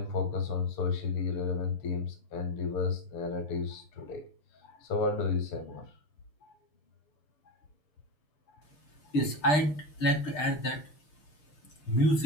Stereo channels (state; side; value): late; right; 6.6 ms